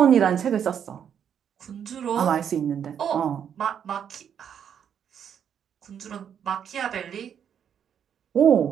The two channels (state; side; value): quieter; left; 8.4 dB